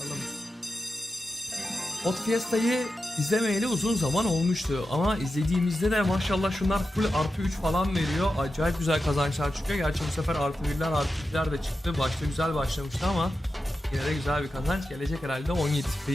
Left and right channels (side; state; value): both; normal; correlation 0.91